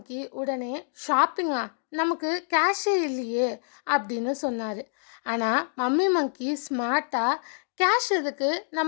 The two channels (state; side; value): silent; right; digital silence